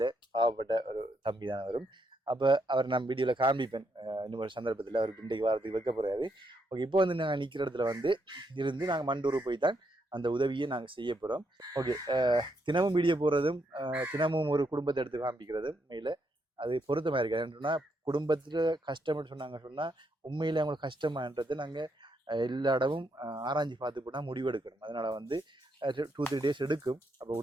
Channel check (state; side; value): normal; both; correlation 0.78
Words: பாவப்பட்ட ஒரு தம்பி தான் அவரும். அப்போ அவர் நான் வீடியோவில் காண்பிப்பேன் இன்னும் ஒரு சந்தர்ப்பத்தில். அவர் இன்றைக்கு வாரத்துக்கு வைக்க போகிறாரு. ஓகே, இப்போ வந்து நாங்கள் நிற்கிற இடத்துல வந்து இருந்து நாங்கள் மண்டூர் போய் தான் அந்த உதவியை நாங்கள் செய்ய போகிறோம். ஓகே, தினமும் வீடியோ போடுறதும் தினமும் ஒரு குடும்பத்தை எடுத்து காண்பிக்கிறதும் உண்மையில் அது பொருத்தமாக இருக்குது. ஏன்னா குடும்பத்தில் கஷ்டம்னு சொன்னால் உண்மையில் அவங்களுக்கு கஷ்டமான்றது நாங்கள் எல்லா இடமும் ஆராய்ச்சி பார்த்து போனால் முடிவெடுக்கணும். அதனால் வந்து 2-3 days எடுக்கும். அப்போ